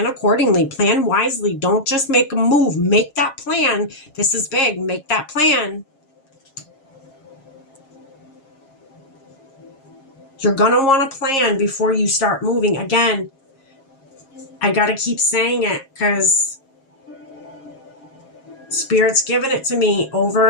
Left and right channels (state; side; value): late; right; 7.4 ms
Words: accordingly. Plan wisely. Don't just make a move. Make that plan. This is big. Make that plan. You're going to want to plan before you start moving. Again, I got to keep saying it because Spirit's given it to me